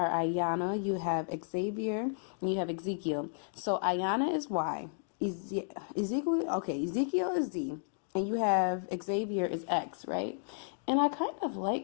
Ayana, you have Xavier, and you have Ezekiel. So Ayana is Y, Ezekiel is Z, and you have Xavier is X, right? And I kind of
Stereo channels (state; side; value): silent; right; digital silence